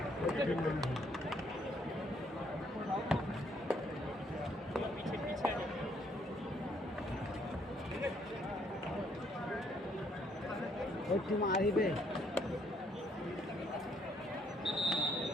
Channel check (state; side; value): normal; both; correlation 0.68